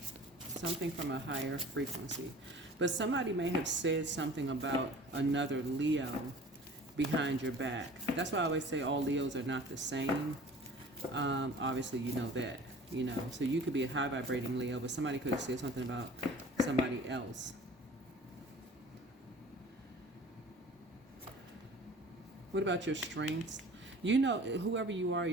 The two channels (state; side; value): normal; both; correlation 0.45